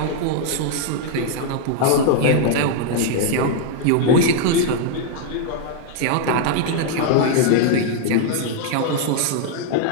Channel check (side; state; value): both; different; correlation 0.00